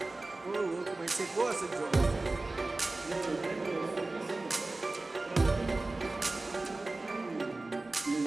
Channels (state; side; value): quieter; left; 3.1 dB